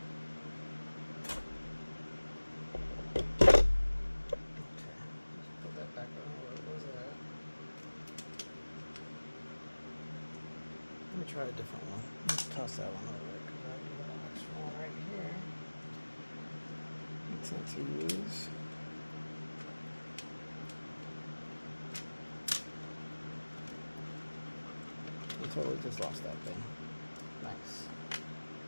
Let me try a different one. Let's toss that one over because I have an extra one right here. I tend to use. I totally just lost that thing. Nice.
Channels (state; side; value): inverted; both; correlation -1.00